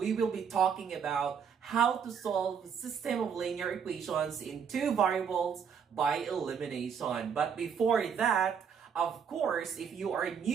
will be talking about how to solve a system of linear equations in two variables by elimination. But before that, of course, if you are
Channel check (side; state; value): left; quieter; 7.1 dB